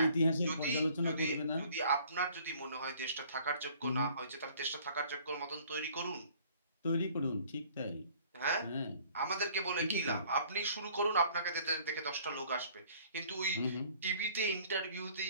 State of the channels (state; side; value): inverted; both; correlation -0.55